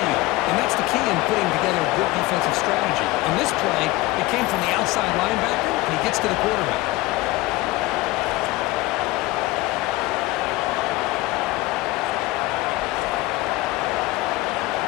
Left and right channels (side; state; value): right; quieter; 19.2 dB